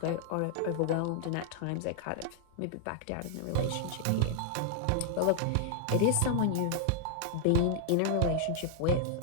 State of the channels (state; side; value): different; both; correlation -0.01